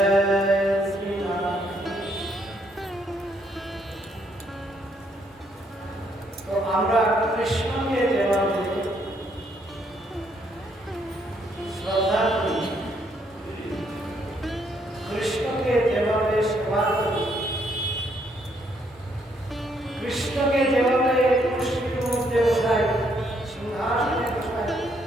শ্রীরাম। তো আমরা কৃষ্ণকে যেভাবে শ্রদ্ধা করি, কৃষ্ণকে যেভাবে সেবা করি, কৃষ্ণকে যেভাবে কুর্সির মধ্যে বসাই, সিংহাসনে বসাই,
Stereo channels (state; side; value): normal; both; correlation 0.71